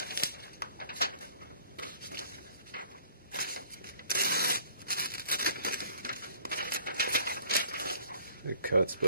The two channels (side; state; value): both; inverted; correlation -0.57